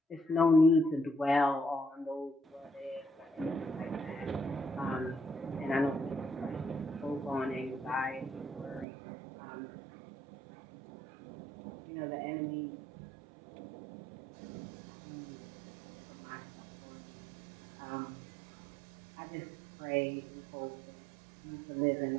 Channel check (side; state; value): left; drops out; at 8.8 s